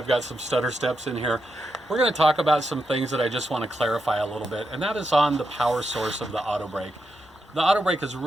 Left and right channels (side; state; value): both; normal; correlation 0.85